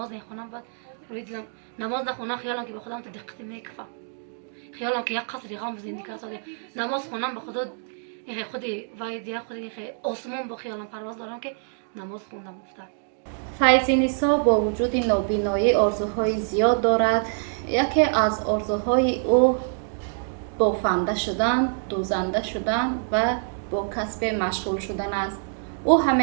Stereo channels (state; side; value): silent; left; digital silence